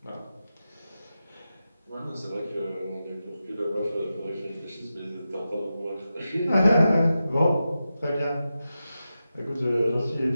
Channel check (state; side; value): inverted; both; correlation -0.91